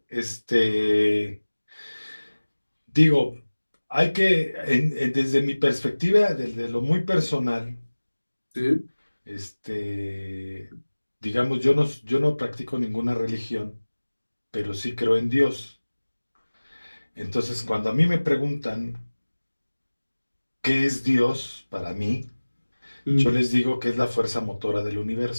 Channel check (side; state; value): both; inverted; correlation -1.00